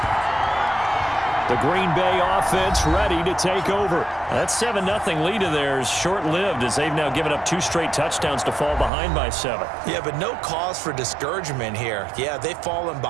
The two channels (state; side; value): drops out; left; at 8.9 s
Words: The Green Bay offense ready to take over. That 7-0 lead of theirs short-lived as they've now given up 2 straight touchdowns to fall behind by 7. Yeah, but no cause for discouragement here. Yeah, they've fallen